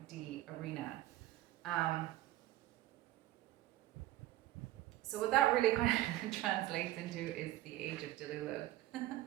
arena. So what that really kind of translates into is the age of Delilah,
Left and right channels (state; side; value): quieter; left; 15.3 dB